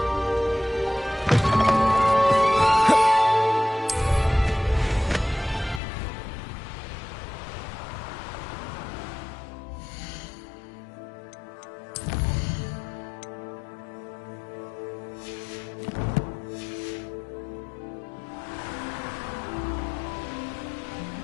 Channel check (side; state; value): right; drops out; at 5.8 s